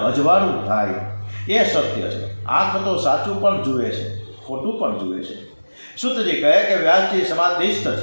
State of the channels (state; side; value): inverted; both; correlation -1.00